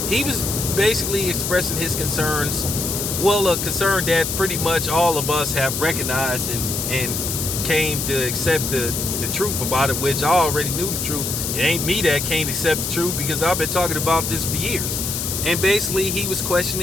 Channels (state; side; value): noise; left; hiss, 2 dB below the sound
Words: He was basically expressing his concerns. Well, a concern that pretty much all of us have recognized and came to accept the truth about it, which I already knew the truth. It ain't me that can't accept the truth because I've been talking about this for years. And basically, he was